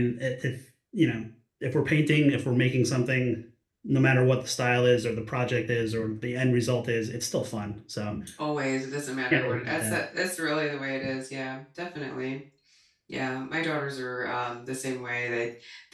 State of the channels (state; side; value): identical; both; correlation 1.00